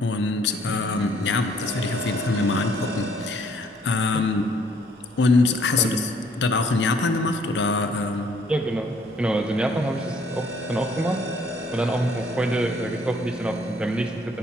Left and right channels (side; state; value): both; normal; correlation 0.63